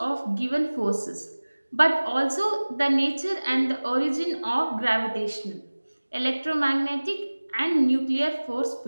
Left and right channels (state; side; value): inverted; both; correlation -1.00